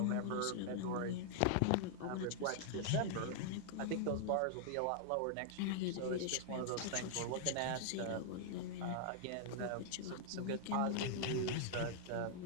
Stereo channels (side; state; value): both; different; correlation -0.01